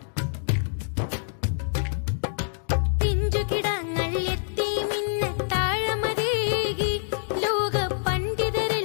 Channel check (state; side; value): silent; right; digital silence